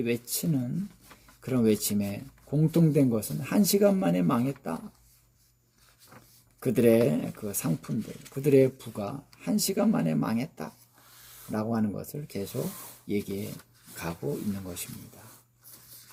외치는 그런 외침에 공통된 것은 한 시간 만에 망했다. 그들의 그 상품들, 그들의 부가 한 시간 만에 망했다. 라고 하는 것을 계속 얘기해 가고 있는 것입니다.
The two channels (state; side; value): identical; both; correlation 1.00